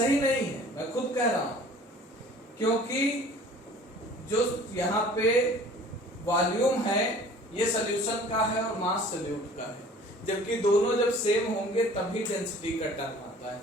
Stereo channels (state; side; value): normal; both; correlation 0.48